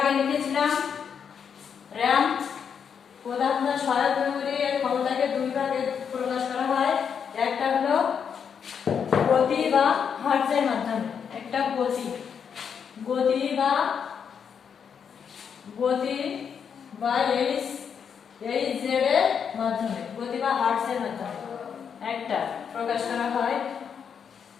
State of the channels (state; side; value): quieter; right; 7.2 dB